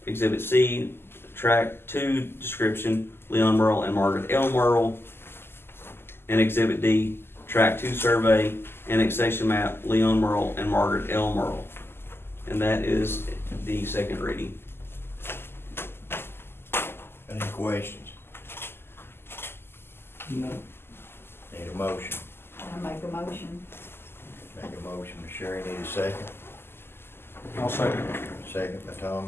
Exhibit C, Tract 2 description, Leon Merle and Margaret L. Merle. And Exhibit D, Tract 2 survey, annexation map, Leon Merle and Margaret L. Merle. And that is the second reading. Any questions? No. Need a motion? I make a motion. Make a motion, Ms. Sherry, need a second? I'll second. Second by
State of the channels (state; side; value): late; right; 0.11 ms